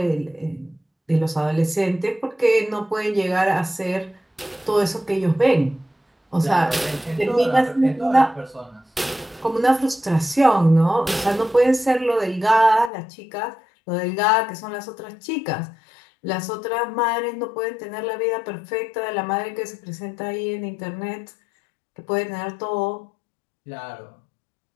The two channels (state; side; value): drops out; right; at 12.9 s